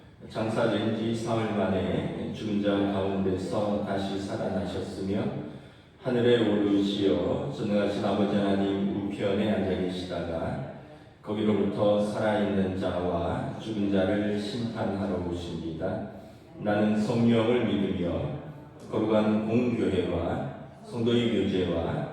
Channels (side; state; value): both; identical; correlation 1.00